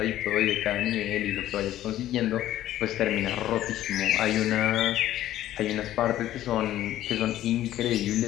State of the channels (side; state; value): right; quieter; 13.3 dB